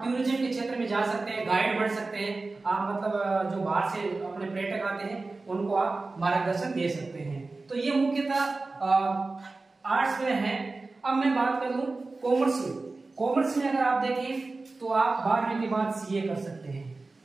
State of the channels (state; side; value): quieter; left; 3.5 dB